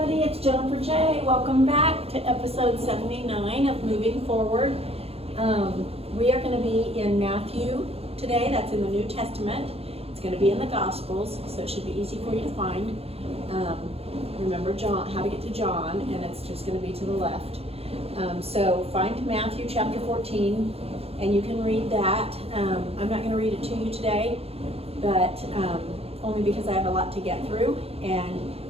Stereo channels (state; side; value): late; left; 0.29 ms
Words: it's Jennifer J. Welcome back to episode 79 of Moving Forward. We are going to be in Matthew today. That's in the New Testament. It's going to be in the Gospels, so it should be easy for you to find. Remember John, how to get to John, and it's just going to be to the left. So find Matthew chapter 14, and you can read that. I'm not going to read it to you today, but only because I have a lot to get through. And